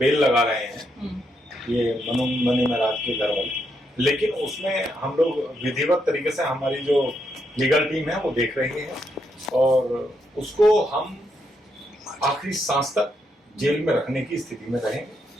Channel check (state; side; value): normal; both; correlation 0.79